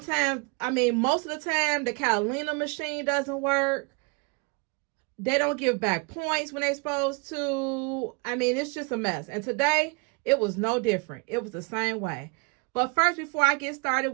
most of the time, the Catalina machine doesn't work. They don't give back points when they're supposed to. It's just a mess. And today, it was no different. It was the same way. But first, before I get started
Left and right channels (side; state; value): left; quieter; 31.1 dB